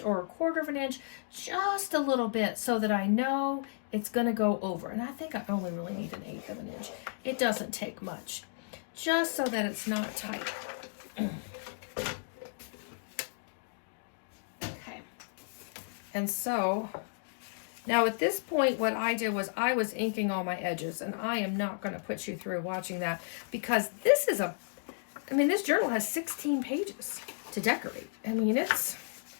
1/4 of an inch, just a little bit so that I know it's going to go over. And I think I only really need 1/8 of an inch. It doesn't take much, just so that it's not tight. Okay. And so now at this point, what I did was I was inking all my edges, and I am not going to put you through watching that because this is this journal has 16 pages to decorate. I mean,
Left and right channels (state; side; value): silent; right; digital silence